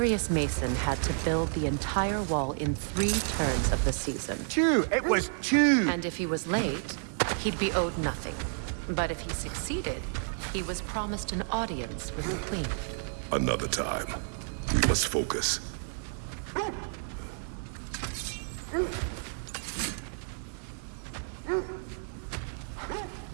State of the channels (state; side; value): silent; left; 57 dB below the other